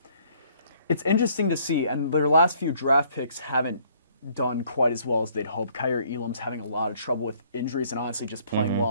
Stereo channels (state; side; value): inverted; both; correlation -0.62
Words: interesting to see, and their last few draft picks haven't done quite as well as they'd hoped. Kyrie Elam's having a lot of trouble with injuries and honestly just playing well